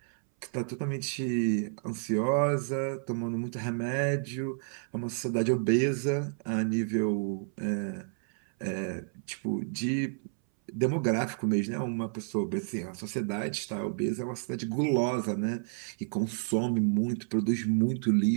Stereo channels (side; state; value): left; silent; 57 dB below the other